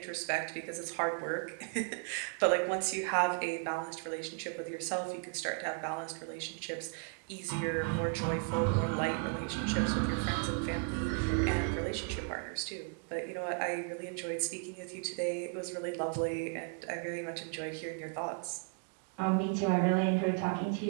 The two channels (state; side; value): quieter; left; 38.3 dB